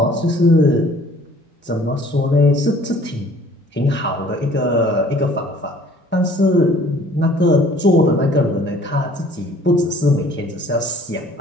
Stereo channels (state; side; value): normal; both; correlation 0.54